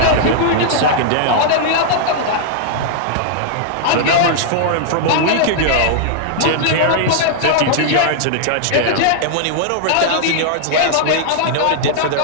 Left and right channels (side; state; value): both; different; correlation -0.01